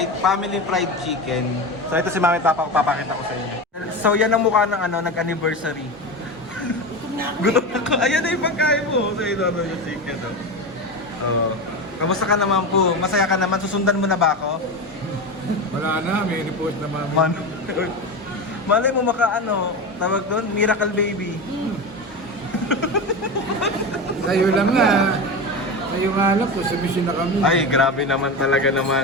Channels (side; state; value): both; normal; correlation 0.22